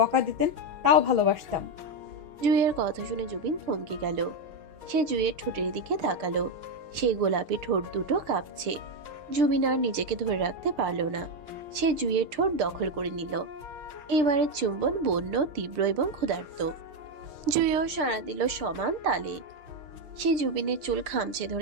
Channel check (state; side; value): late; left; 6.7 ms